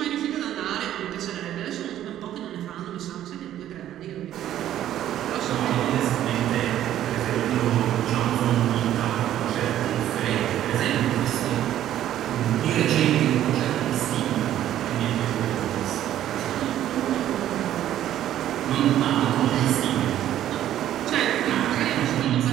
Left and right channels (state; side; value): quieter; left; 12.0 dB